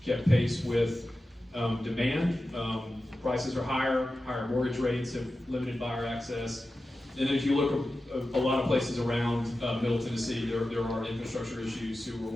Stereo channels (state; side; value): normal; both; correlation 0.93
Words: kept pace with demand. Prices are higher mortgage rates have limited buyer access. And then if you look at a lot of places around Middle Tennessee, there are infrastructure issues, sewer,